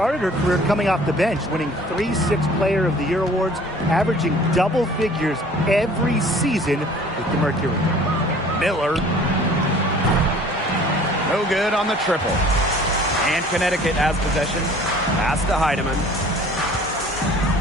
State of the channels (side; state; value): both; normal; correlation 0.50